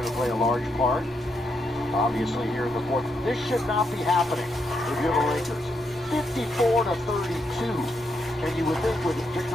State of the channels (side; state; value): both; normal; correlation 0.79